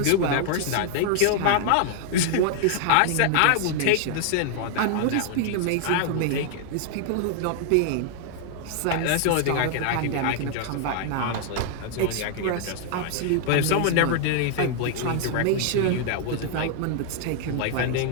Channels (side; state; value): both; different; correlation 0.00